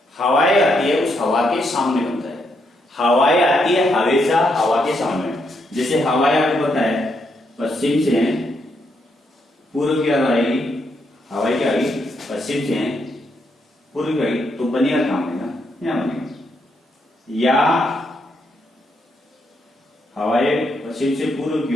हवाएं आती है उस हवा के सामने बनता है। हवाएं आती है हमेशा हवा के सामने, जैसे हवाएं आपको पता है पश्चिम से पूर्व की ओर आएगी, हवाएं क्या आएगी पश्चिम से पूर्व गई तो बनेगा कहां बनेगा, यहां बनेगा। या हवाएं पश्चिम से पूर्व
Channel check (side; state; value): both; normal; correlation 0.78